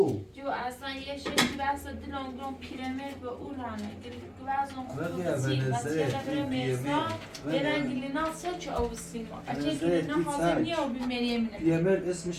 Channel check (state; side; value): identical; both; correlation 1.00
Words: جو اصلا یه شکلی بس دلون گرون پیرمید و او رانه گوازون ولی خوبی ونزه بچه بره مرسا برن گلینا سه چه او سیما اچه گلینا حاضر نیه و بی مریم نه پیامر